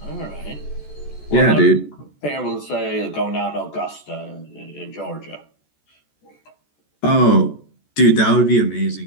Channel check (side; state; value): right; late; 14 ms